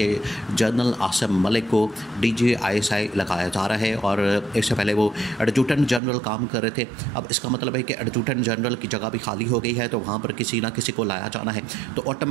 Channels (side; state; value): left; drops out; at 6.0 s